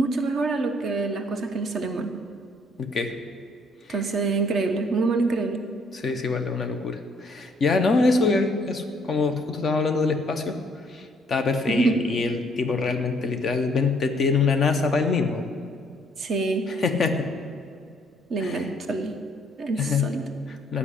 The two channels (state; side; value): normal; both; correlation 0.65